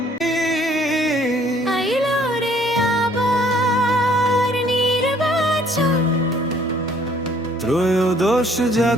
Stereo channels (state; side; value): normal; both; correlation 0.60